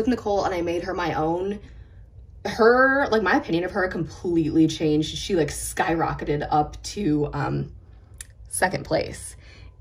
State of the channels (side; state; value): both; identical; correlation 1.00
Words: Nicole and I made her my own, my opinion of her completely changed. She like skyrocketed up to second place